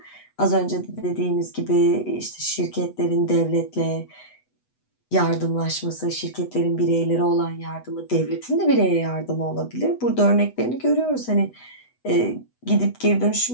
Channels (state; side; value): late; right; 8.1 ms